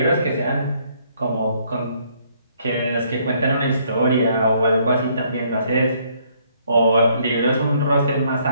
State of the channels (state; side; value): inverted; both; correlation -0.67